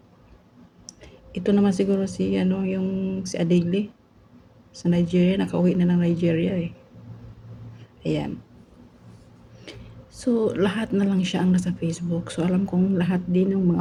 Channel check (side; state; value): both; identical; correlation 1.00